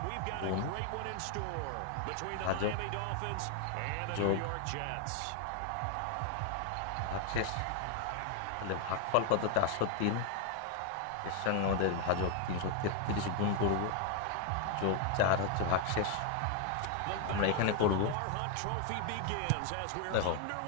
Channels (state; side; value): different; both; correlation 0.01